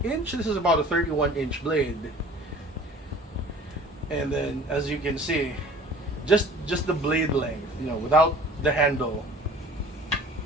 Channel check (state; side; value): normal; both; correlation 0.47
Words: inch. This is about a 31-inch blade. And then as you can see, just the blade length, without the handle,